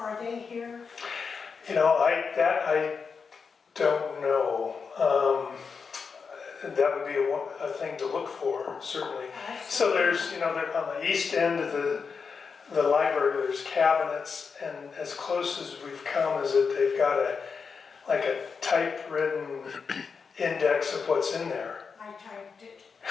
they here? I don't know. That would be a thing to look for, certainly. So there's, they're on the east end of the library, there's cabinets, and as close as we've come is that they've got a typewritten index of what's in there. I typed it.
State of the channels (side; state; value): right; quieter; 5.5 dB